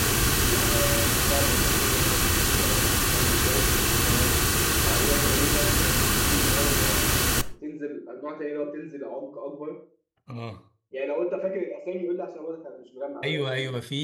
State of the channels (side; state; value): both; identical; correlation 1.00